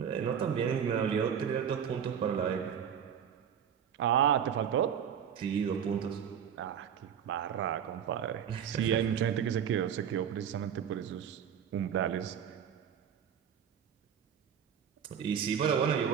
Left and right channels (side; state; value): left; quieter; 8.4 dB